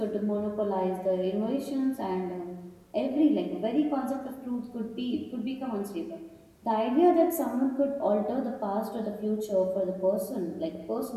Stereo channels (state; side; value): identical; both; correlation 1.00